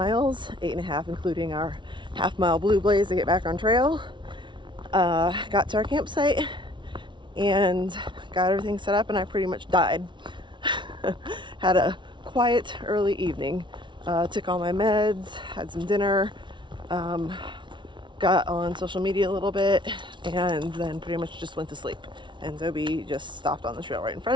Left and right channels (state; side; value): late; left; 0.24 ms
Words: 8.5 including our half-mile blue blaze to get back on trail. Got to our campsite and got everything set up, and I pretty much died. Had a quiet early evening. Took all my meds, had some dinner, got on social media a little bit, and then pretty much just went to sleep. And Zoe just stopped on the trail right in